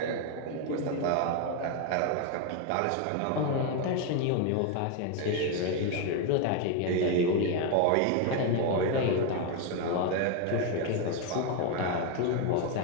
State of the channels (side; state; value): both; different; correlation 0.01